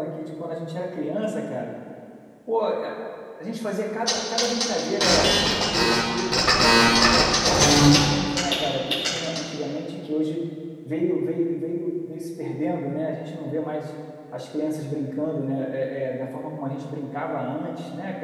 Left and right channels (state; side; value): identical; both; correlation 1.00